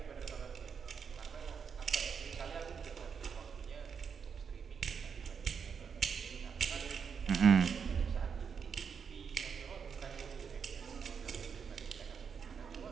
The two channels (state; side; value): quieter; left; 6.5 dB